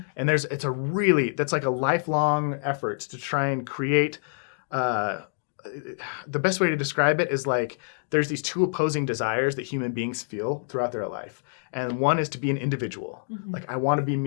And that's like a lifelong effort to try and create the best way to describe it is like there's these two opposing desires that human beings feel throughout their life. And one is to be an individual. Mhm. Like I want to be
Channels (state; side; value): silent; right; digital silence